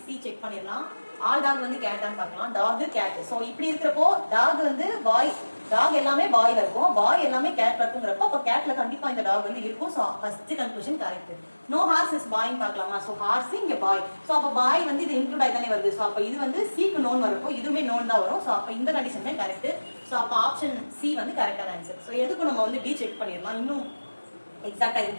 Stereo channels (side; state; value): both; inverted; correlation -1.00